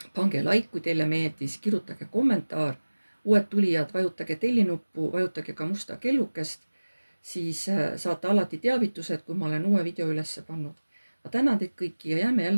pange like, kui teile meeldis, kirjutage kommentaar. uued tulijad, vajutage tellinuppu, vajutage ka musta kellukest, siis saate alati teavitused, kui ma olen uue video üles pannud. ma tänan teid kõiki ja jääme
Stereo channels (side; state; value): both; inverted; correlation -1.00